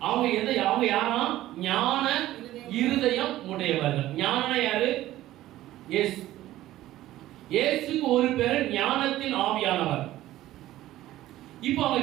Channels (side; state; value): left; quieter; 14.9 dB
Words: அவங்க யாரா ஞான இருதயம் உடையவர்கள். ஞானம் யாரு? இயேசு. இயேசுக்கு ஒரு பேர் ஞானத்தின் ஆவியானவர். இப்போ அவங்க